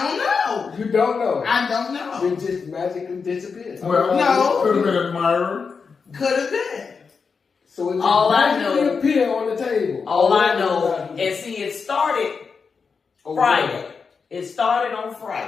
don't know. You don't know. I don't know. It just magically disappeared. Well, No. could have been admirer. Could have been. So it just All I magically know- appeared on the table. All I know, and see, it started Friday. It started on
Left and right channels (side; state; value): right; quieter; 5.4 dB